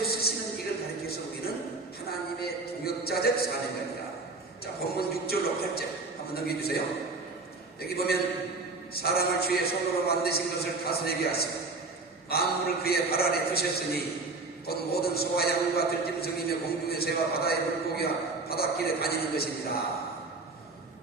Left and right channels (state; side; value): quieter; left; 3.6 dB